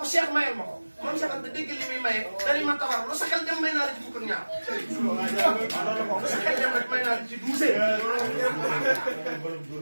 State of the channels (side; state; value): both; inverted; correlation -1.00